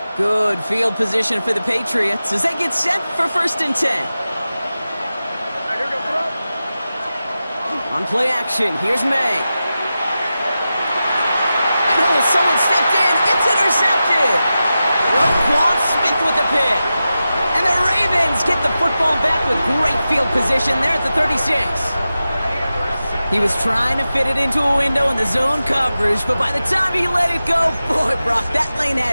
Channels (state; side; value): inverted; both; correlation -0.93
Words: Good field position for the Patriots as they get set for 1st and 10. On play action, here's May. And oh, someone stepped in. It's intercepted. Roquan Smith with the pick. And the Ravens get the football back with great field position there at the 36. He was trying to fit it into a window in the zone coverage, but by the time he let it go, boy, Brock, that lane